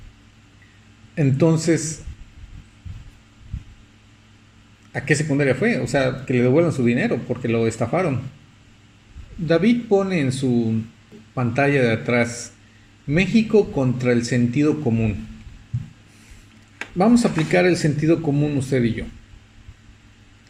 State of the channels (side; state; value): both; identical; correlation 1.00